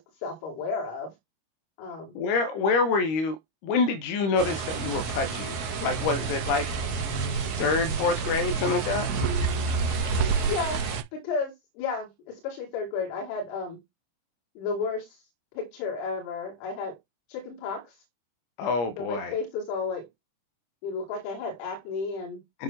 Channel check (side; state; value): right; late; 25 ms